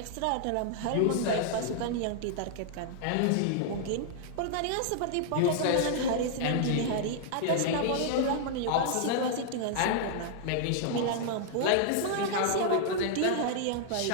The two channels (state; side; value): different; both; correlation -0.01